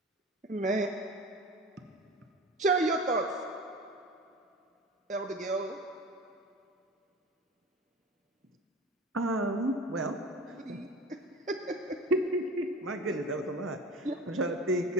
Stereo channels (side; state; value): both; normal; correlation 0.35